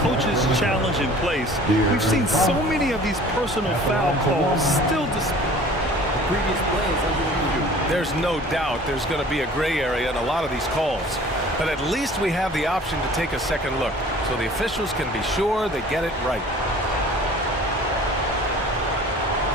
coach's challenge in place, we've seen so many of these personal foul calls still Previous plays under review. There's no doubt there's going to be a gray area in a lot of these calls. But at least we have the option to take a second look, so the officials can be sure they get it right.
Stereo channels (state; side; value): normal; both; correlation 0.47